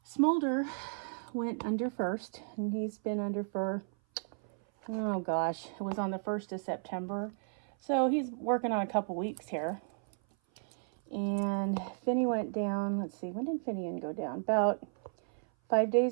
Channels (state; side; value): silent; left; 55 dB below the other